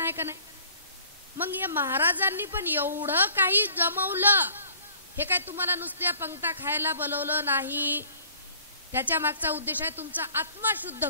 आहे का नाही? मग या महाराजांनी पण एवढं काही जमवलं. हे काय तुम्हाला नुसत्या पंक्ता खायला बोलवलं नाही. त्याच्या मागचा उद्देश आहे तुमचा आत्मा शुद्ध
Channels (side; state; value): both; inverted; correlation -0.54